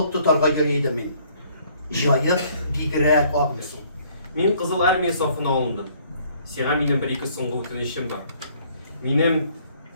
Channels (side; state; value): both; inverted; correlation -0.61